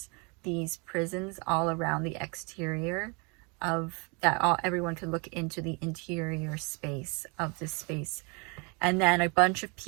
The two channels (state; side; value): quieter; left; 31.4 dB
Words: these prisons all around the exterior of that. Everyone could look into the interior space of this space. And then a bunch of